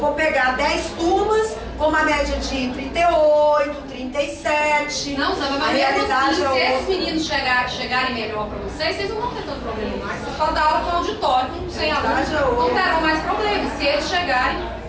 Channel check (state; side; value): identical; both; correlation 1.00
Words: pegar 10 turmas com uma média de 38, 37. Não, sabe, mas mesmo assim, se esses meninos chegarem melhor para vocês não vão ter tanto problema mais. Vocês podem dar aula com auditório, sem alunos, não terão mais problemas. Se eles chegarem,